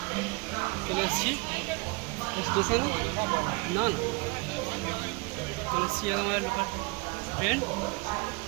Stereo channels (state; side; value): quieter; left; 28.0 dB